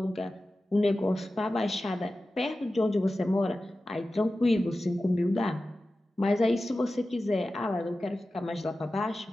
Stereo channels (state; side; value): normal; both; correlation 0.94